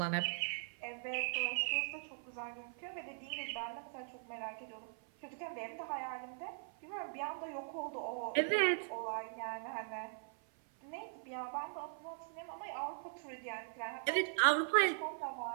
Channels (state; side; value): silent; left; 51 dB below the other